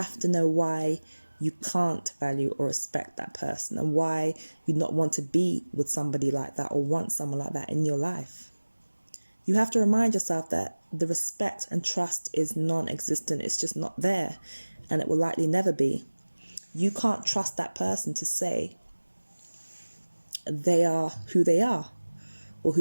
to know why you can't value or respect that person, and why you not want to be with somebody like that or want someone like that in your life. You have to remind yourself that the respect and trust is non-existent. It's just not there, and it will likely never be. You can't trust that person to say they are who they are or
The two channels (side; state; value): both; inverted; correlation -1.00